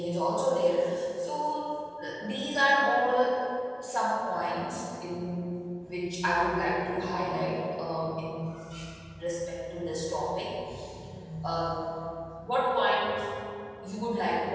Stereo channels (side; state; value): both; identical; correlation 1.00